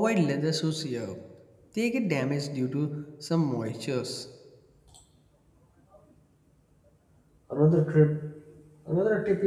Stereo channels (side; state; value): both; identical; correlation 1.00